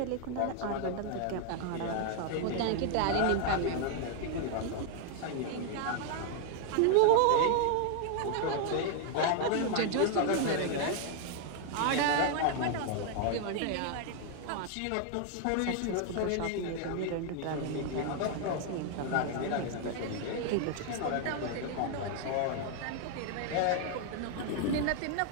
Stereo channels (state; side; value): different; both; correlation 0.00